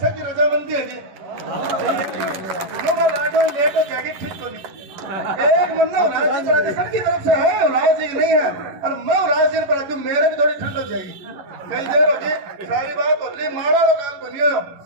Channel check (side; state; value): left; late; 11 ms